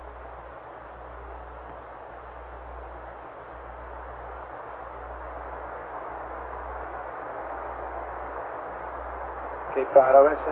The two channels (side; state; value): both; identical; correlation 1.00